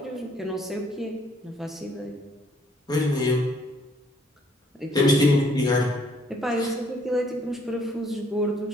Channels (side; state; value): both; normal; correlation 0.65